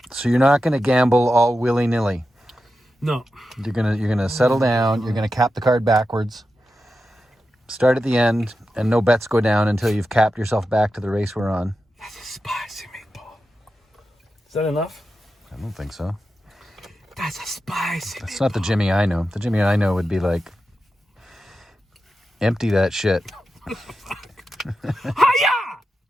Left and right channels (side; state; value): both; normal; correlation 0.90